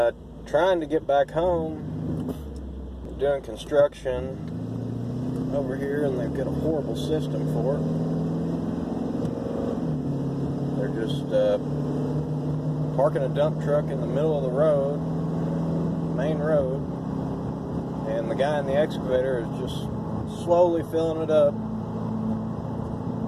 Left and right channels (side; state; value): both; identical; correlation 1.00